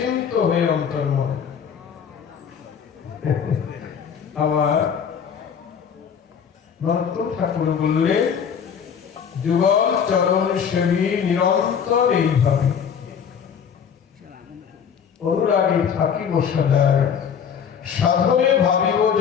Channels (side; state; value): right; quieter; 7.4 dB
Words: হয়ে অন্তর্মন। আবার নরোত্তম ঠাকুর বললেন যুগল চরণ সেবী নিরন্তর এইভাবে অনুরাগে থাকিব সদায়, সাধনে ভাবিব